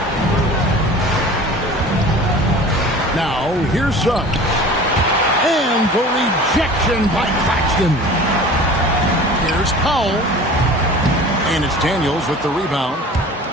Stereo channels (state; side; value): normal; both; correlation 0.41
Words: Now, here's Suggs. And the rejection by Claxton. Here's Powell. And it's Daniels with the rebound.